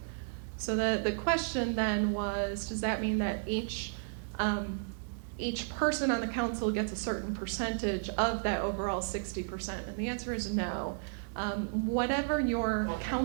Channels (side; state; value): left; silent; digital silence